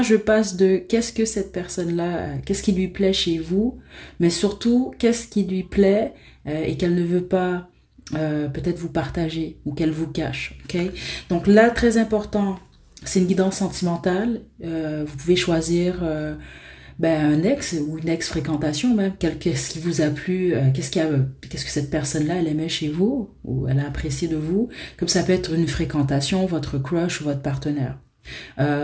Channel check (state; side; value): identical; both; correlation 1.00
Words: je passe de qu'est-ce que cette personne-là, qu'est-ce qui lui plaît chez vous, mais surtout qu'est-ce qui lui plaît et qu'elle ne veut pas peut-être vous partager ou qu'elle vous cache. Ok. Donc là, très important, c'est une guidance sentimentale. Vous pouvez choisir ben, un ex ou une ex-fréquentation même, qu'est-ce qui vous a plu, qu'est-ce que cette personne-là, elle aimait chez vous ou elle a apprécié de vous, comme ça peut être une fréquentation, votre crush ou votre partenaire.